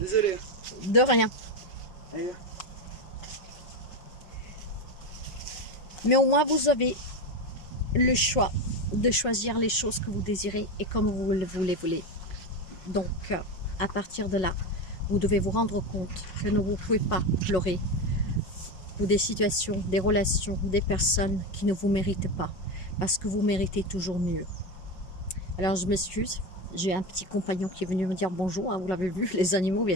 De rien. Allez. Mais au moins, vous avez le choix de choisir les choses que vous désirez et comme vous le voulez. Donc, à partir de là, vous devez vous rendre compte que vous ne pouvez pas pleurer pour des situations, des relations, des personnes qui ne vous méritent pas, parce que vous méritez toujours mieux. Alors, je m'excuse, J'ai un petit compagnon qui est venu me dire bonjour, hein, vous l'avez vu, les animaux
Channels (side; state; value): right; late; 5.4 ms